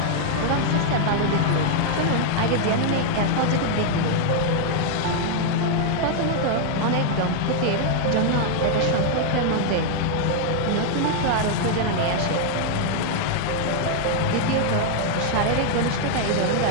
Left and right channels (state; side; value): different; both; correlation 0.00